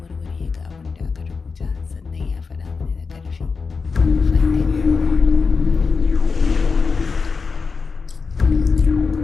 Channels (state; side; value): quieter; right; 4.9 dB